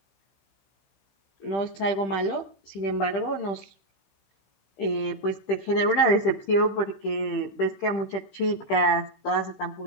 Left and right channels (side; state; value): right; late; 15 ms